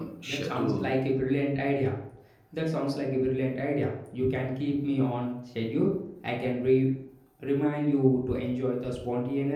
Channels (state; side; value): identical; both; correlation 1.00